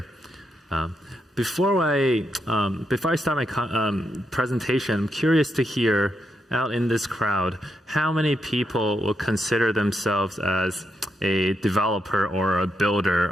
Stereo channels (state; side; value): normal; both; correlation 0.82